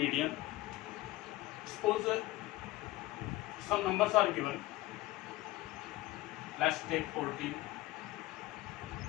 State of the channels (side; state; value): right; quieter; 18.1 dB